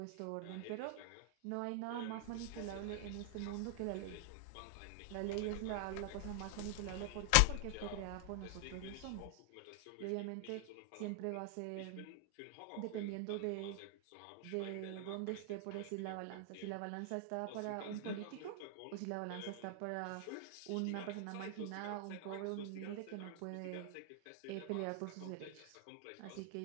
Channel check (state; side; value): different; both; correlation 0.00